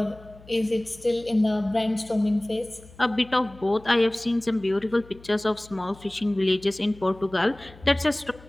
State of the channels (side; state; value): left; noise; hum, 22 dB below the sound